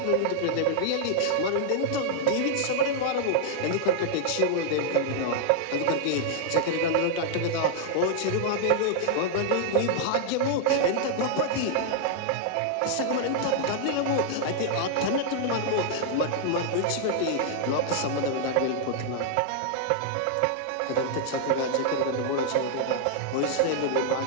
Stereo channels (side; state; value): both; different; correlation -0.01